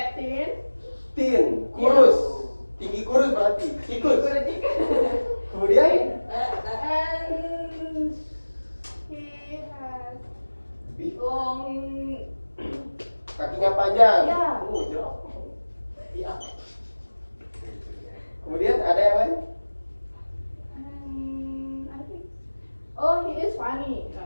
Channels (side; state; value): both; inverted; correlation -1.00